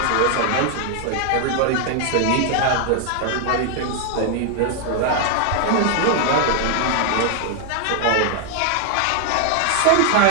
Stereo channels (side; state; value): both; different; correlation 0.00